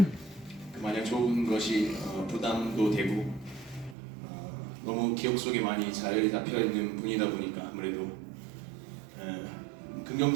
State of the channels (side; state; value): left; drops out; at 4.0 s